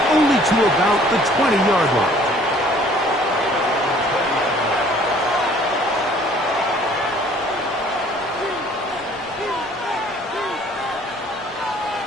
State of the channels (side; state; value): both; normal; correlation 0.56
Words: only to about the 20-yard line.